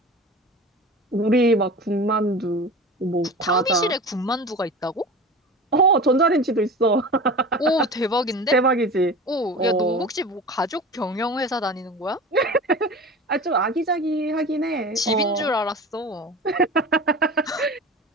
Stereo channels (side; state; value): both; normal; correlation 0.34